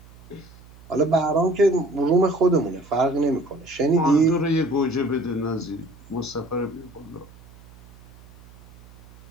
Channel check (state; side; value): noise; right; hum, 23 dB below the sound